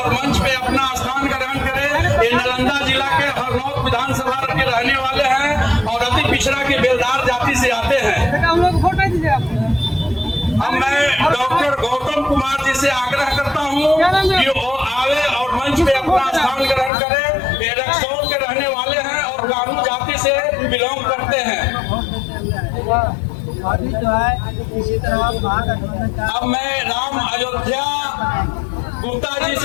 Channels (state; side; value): drops out; right; at 16.9 s